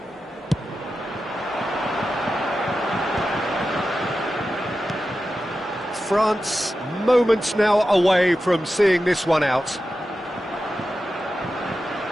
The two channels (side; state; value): both; normal; correlation 0.92